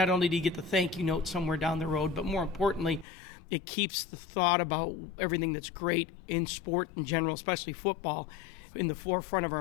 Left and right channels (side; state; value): right; drops out; at 3.1 s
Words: only do you get the thank you note somewhere down the road, but more importantly, it keeps the thought about everything that's great in sport in general, especially football, in the forefront of